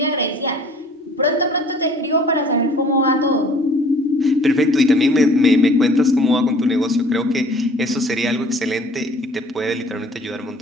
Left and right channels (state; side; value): normal; both; correlation 0.52